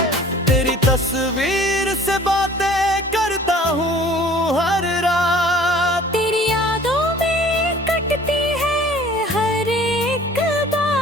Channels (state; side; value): normal; both; correlation 0.50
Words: तेरी तस्वीर से बातें करता हूँ हर रात। तेरी यादों में कटती है हर एक